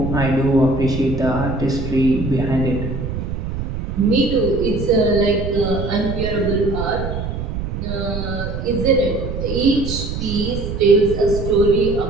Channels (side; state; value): right; noise; rumble, 5 dB below the sound